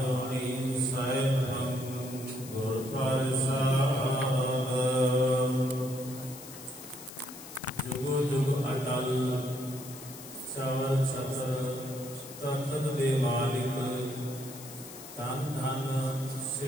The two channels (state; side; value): noise; left; hiss, 14 dB below the sound